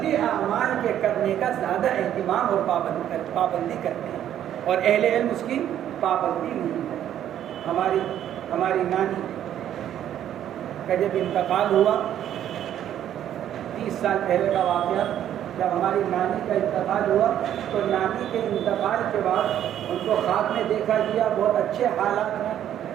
اعمال کے کرنے کا زیادہ اہتمام اور پابندی کرتے ہیں، اور اہل علم اس کی پابندی نہیں کرتے۔ ہماری نانی کا جب انتقال ہوا 30 سال پہلے کا واقعہ، جب ہماری نانی کا انتقال ہوا تو نانی کے انتقال کے بعد ان کو خواب میں دیکھا گیا بہت اچھے حالات میں،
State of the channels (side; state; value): left; quieter; 10.8 dB